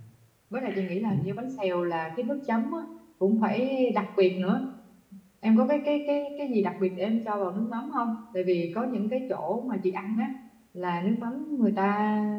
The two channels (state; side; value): identical; both; correlation 1.00